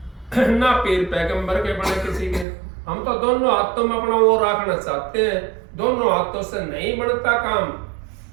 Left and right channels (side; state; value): left; drops out; at 2.5 s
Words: ना पीर पैगंबर के बने किसी के। हम तो दोनों हाथों में अपना वो रखना चाहते हैं। दोनों हाथों से नहीं बनता काम।